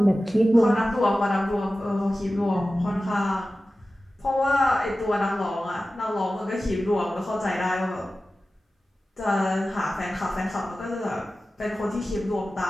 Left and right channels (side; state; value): both; normal; correlation 0.95